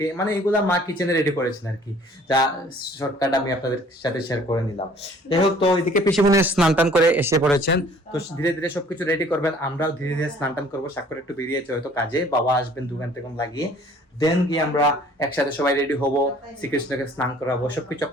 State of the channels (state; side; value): normal; both; correlation 0.54